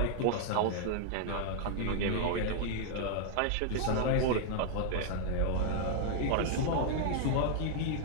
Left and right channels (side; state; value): both; different; correlation -0.01